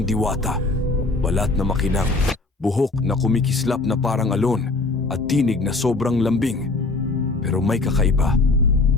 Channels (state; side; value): quieter; right; 3.4 dB